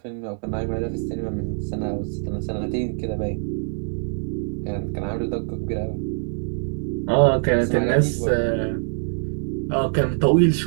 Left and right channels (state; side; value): silent; left; 59 dB below the other